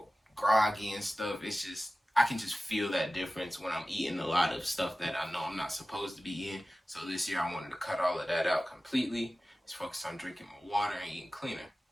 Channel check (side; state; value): both; normal; correlation 0.96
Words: groggy and stuff. It's just, I can just feel that difference when I'm eating a lot of stuff that I know I'm not supposed to be eating. So this year I wanted to cut all of that out completely. Just focus on drinking more water and eating cleaner.